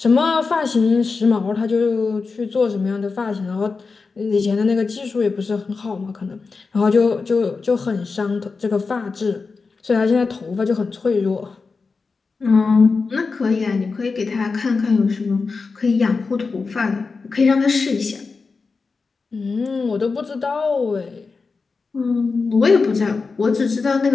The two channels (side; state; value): right; quieter; 4.5 dB